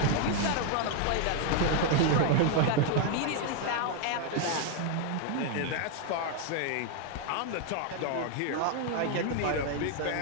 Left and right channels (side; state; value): both; different; correlation 0.00